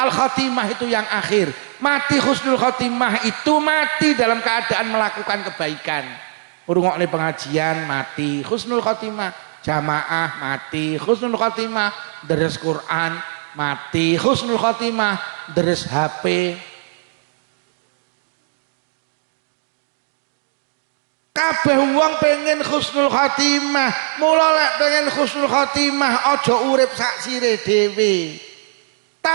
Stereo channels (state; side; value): silent; left; 62 dB below the other